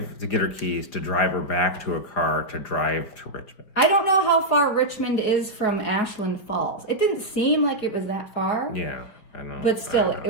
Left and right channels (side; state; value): right; late; 5.0 ms